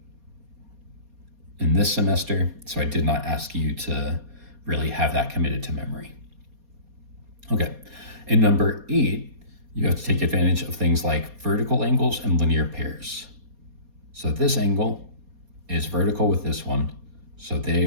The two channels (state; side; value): late; left; 4.2 ms